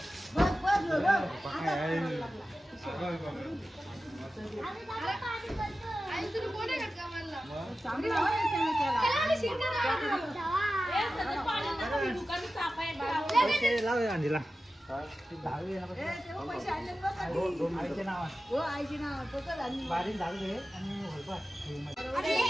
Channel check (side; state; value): both; normal; correlation 0.94